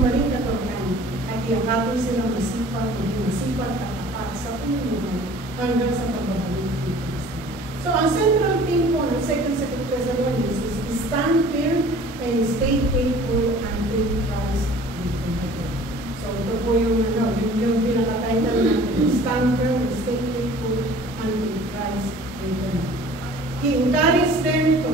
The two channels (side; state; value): both; normal; correlation 0.48